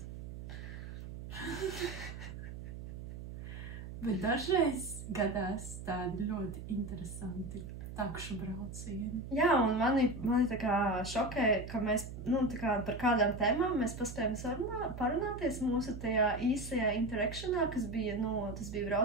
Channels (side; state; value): right; noise; hum, 10 dB below the sound